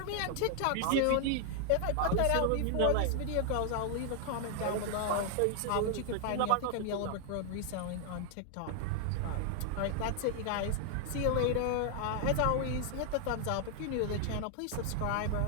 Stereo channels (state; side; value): different; both; correlation 0.00